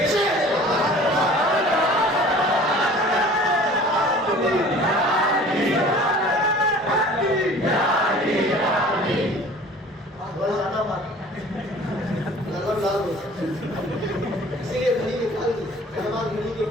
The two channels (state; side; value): normal; both; correlation 0.46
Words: اسی لیے گھڑی نکال دی، ہماری گھڑی کی